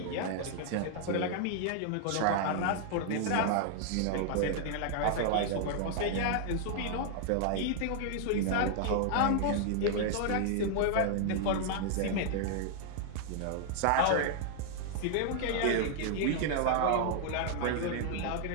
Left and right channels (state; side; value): different; both; correlation -0.01